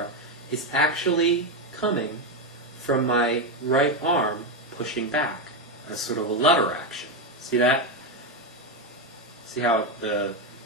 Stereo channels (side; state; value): both; normal; correlation 0.08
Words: is actually coming from my right arm pushing back as sort of a lever action. See that? See how the